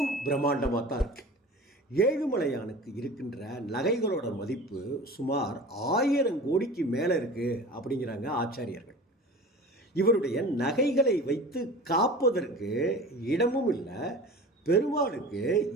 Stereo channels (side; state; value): both; normal; correlation 0.38